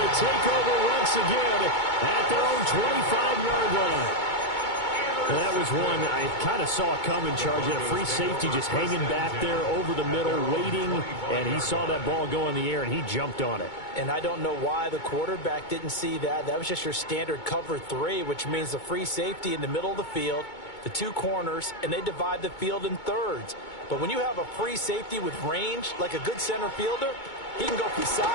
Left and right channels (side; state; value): right; late; 2.2 ms